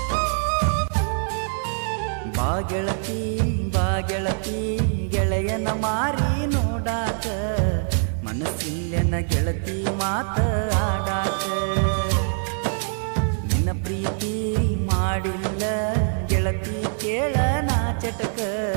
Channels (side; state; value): left; silent; 63 dB below the other